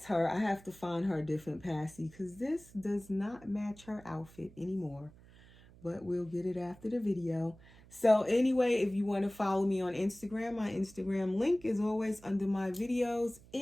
her. I have to find her a different passy because this does not match her outfit anymore. but we'll get it after the video. So anyway, if you want to follow me on Instagram, my Instagram link is always under my videos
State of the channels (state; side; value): noise; right; hum, 23 dB below the sound